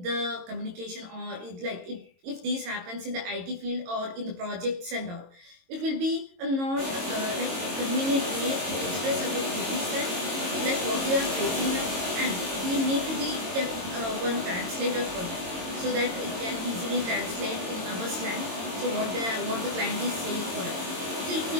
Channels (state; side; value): late; left; 22 ms